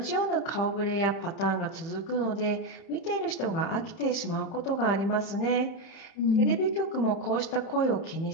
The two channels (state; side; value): late; right; 30 ms